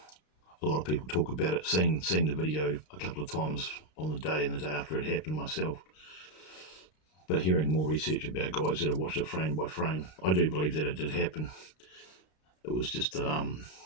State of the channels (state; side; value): late; right; 32 ms